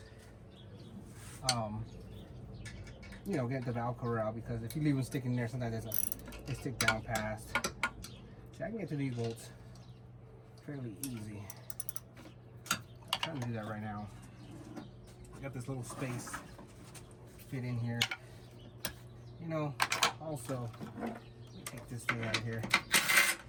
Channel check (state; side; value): identical; both; correlation 1.00